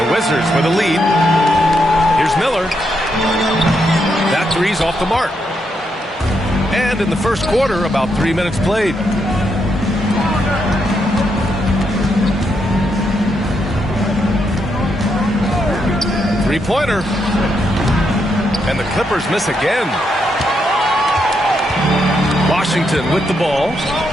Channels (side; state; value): both; normal; correlation 0.79